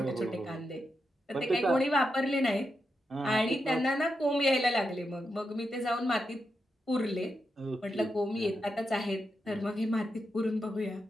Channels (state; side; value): normal; both; correlation 0.86